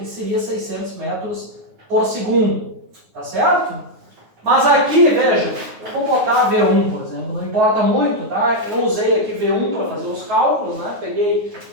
seria 600 metros por segundo. Tá certo? Mas aqui, vejam, eu vou botar V1, por exemplo, não importa muito, tá? Eu usei aqui V1 para fazer os cálculos, né? Peguei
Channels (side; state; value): left; late; 9.4 ms